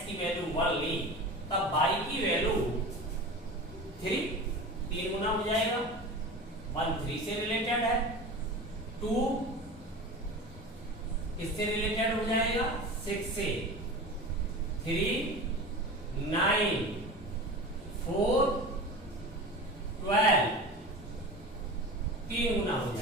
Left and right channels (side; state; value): both; normal; correlation 0.32